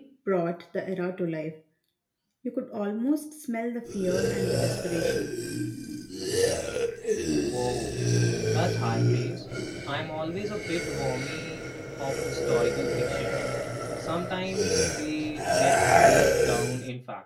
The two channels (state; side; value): identical; both; correlation 1.00